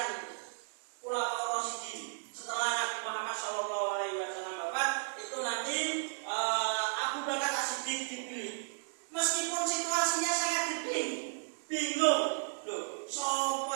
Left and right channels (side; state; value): left; silent; digital silence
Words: Khulafaur Rasyidin setelah Nabi Muhammad SAW wafat. Itu nanti Abu Bakar As-Siddiq dipilih. Meskipun situasinya sangat bingung, loh,